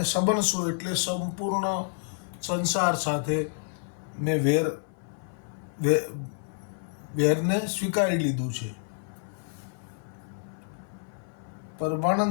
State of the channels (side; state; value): right; silent; 59 dB below the other